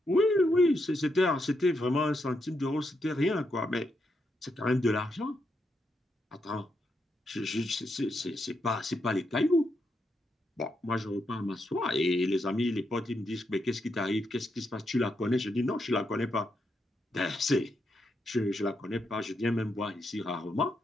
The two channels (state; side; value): normal; both; correlation 0.81